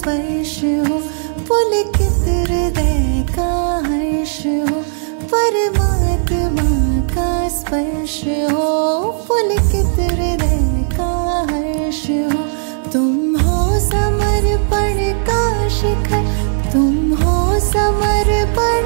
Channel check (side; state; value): left; silent; digital silence